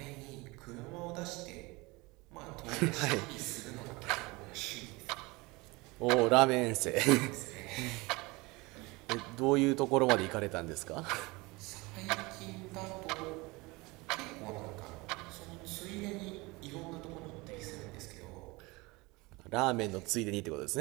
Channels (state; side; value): quieter; left; 24.0 dB